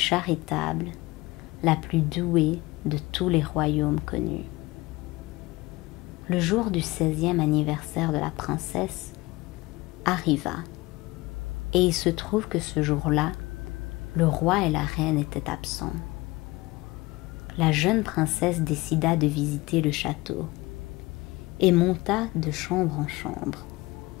la plus douée de tous les royaumes connus. Le jour du 16e anniversaire de la princesse arriva, et il se trouve que ce jour-là, le roi et la reine étaient absents. La jeune princesse décida de visiter le château et monta de chambre en chambre,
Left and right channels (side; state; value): right; quieter; 21.4 dB